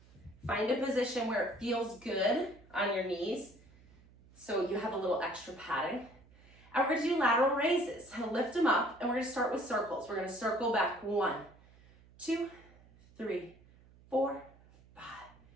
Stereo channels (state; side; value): noise; right; hum, 26 dB below the sound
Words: Find a position where it feels good on your knees, so you have a little extra padding. And we're gonna do lateral raises. Lift them up, and we're gonna start with circles. We're gonna circle back 1, 2, 3, 4, 5,